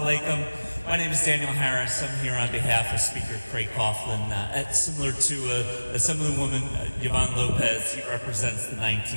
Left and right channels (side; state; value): both; inverted; correlation -1.00